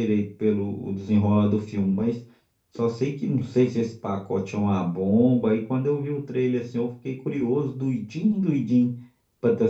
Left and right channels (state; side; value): identical; both; correlation 1.00